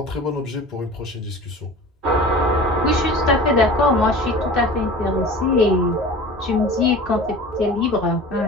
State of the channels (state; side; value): normal; both; correlation 0.39